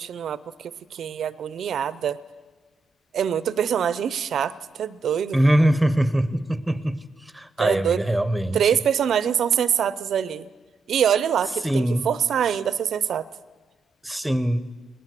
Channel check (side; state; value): left; quieter; 4.2 dB